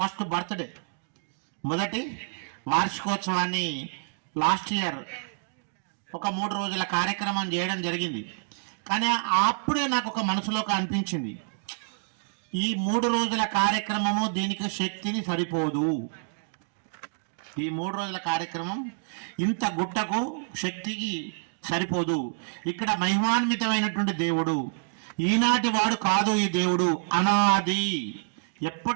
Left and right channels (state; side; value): silent; left; digital silence